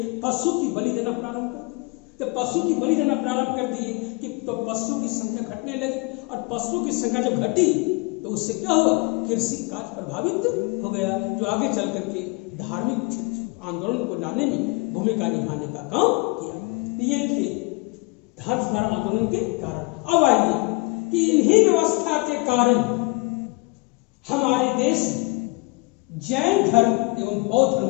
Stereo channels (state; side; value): quieter; right; 26.4 dB